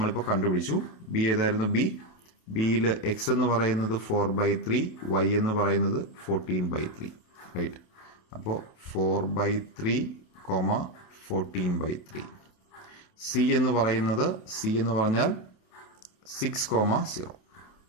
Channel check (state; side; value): late; right; 28 ms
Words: കണ്ടുപിടിച്ചു. ബി ഏതായിരുന്നു? ബിയിൽ എക്സ് എന്ന് പറയുന്നത് 4 by 3, വൈ എന്ന് പറയുന്നത് 14 by 3, റൈറ്റ്? അപ്പോൾ 4 by 3, 14 by 3. സി എന്ന് പറഞ്ഞാൽ 6,0